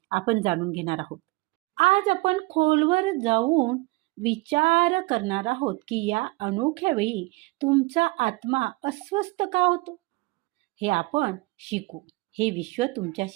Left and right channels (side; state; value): left; quieter; 23.2 dB